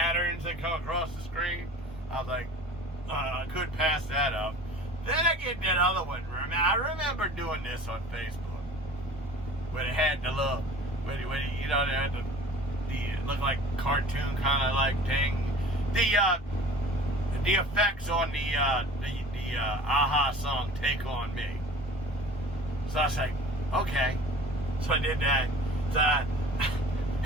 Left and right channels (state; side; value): normal; both; correlation 0.43